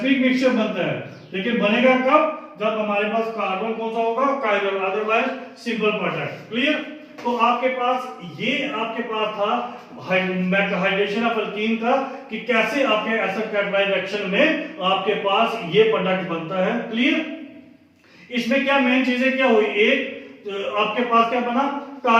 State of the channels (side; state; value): both; identical; correlation 1.00